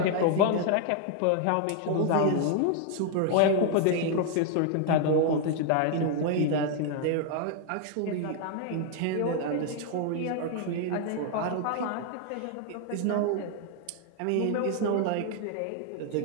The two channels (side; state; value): both; different; correlation 0.00